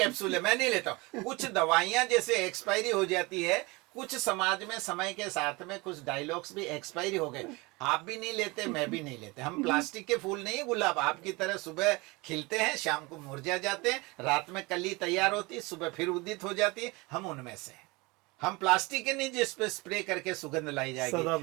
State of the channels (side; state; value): left; quieter; 24.8 dB